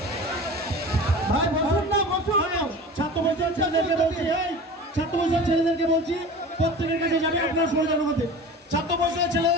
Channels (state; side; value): normal; both; correlation 0.36